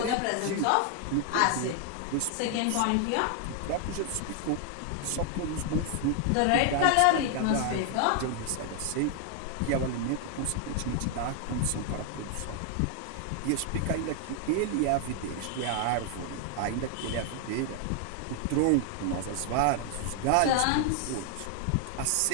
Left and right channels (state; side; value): different; both; correlation 0.00